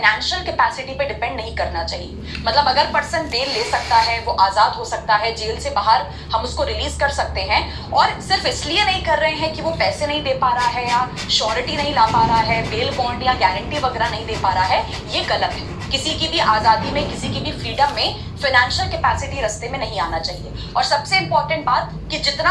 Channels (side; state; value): both; identical; correlation 1.00